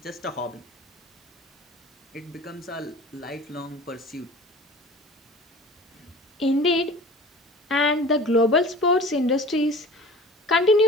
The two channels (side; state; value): both; normal; correlation 0.42